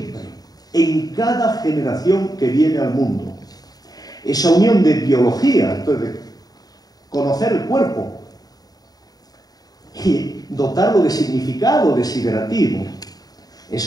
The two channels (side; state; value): right; late; 0.18 ms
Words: en cada generación que viene al mundo. Esa unión de biología, entonces, de conocer el cuerpo y dotarlo de significado desiderativo,